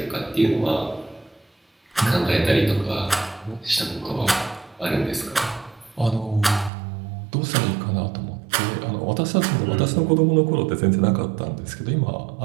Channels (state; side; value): drops out; left; at 6.7 s